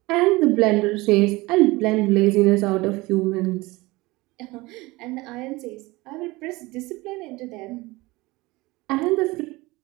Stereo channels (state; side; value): quieter; left; 21.7 dB